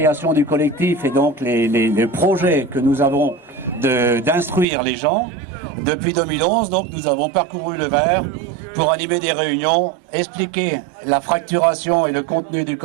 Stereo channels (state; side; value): drops out; left; at 4.7 s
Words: du collectif et donc les projets que nous avons d'instruire les gens, depuis 2011, donc nous avons parcouru le Var pour animer des réunions, expliquer la fracturation et le contenu du